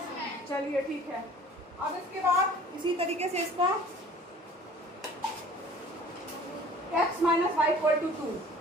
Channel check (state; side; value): normal; both; correlation 0.49